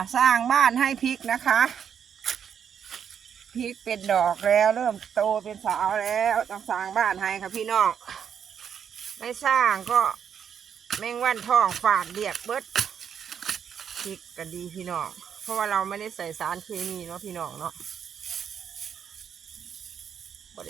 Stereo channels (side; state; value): left; quieter; 8.0 dB